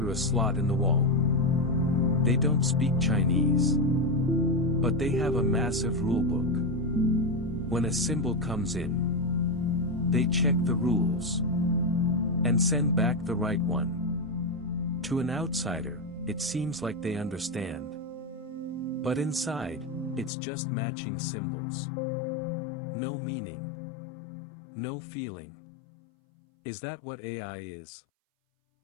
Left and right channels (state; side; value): drops out; right; at 20.3 s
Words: a slot in the wall. They don't speak Chinese, but they have a massive rulebook. When a symbol comes in, they check the rules and send back the right one. To an outsider, it seems like they understand. But inside, it's just matching symbols. No meaning. No feeling. Is that what AI is?